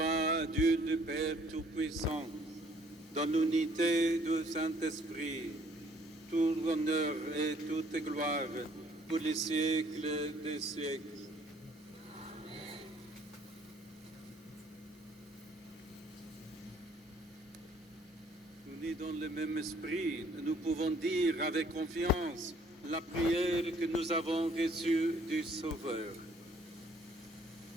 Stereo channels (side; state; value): both; normal; correlation 0.61